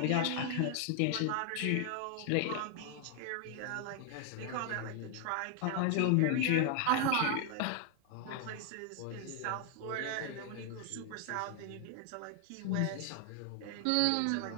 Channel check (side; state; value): both; different; correlation 0.00